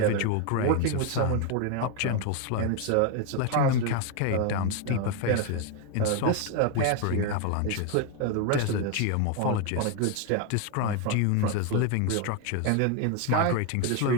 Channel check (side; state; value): both; different; correlation 0.01